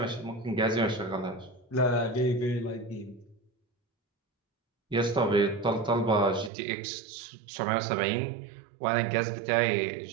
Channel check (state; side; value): drops out; left; at 6.5 s